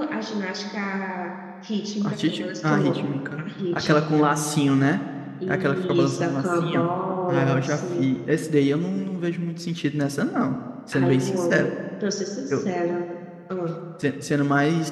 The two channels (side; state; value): both; identical; correlation 1.00